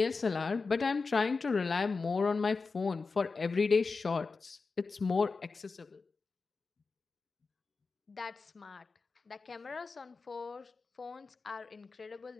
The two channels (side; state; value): right; quieter; 4.3 dB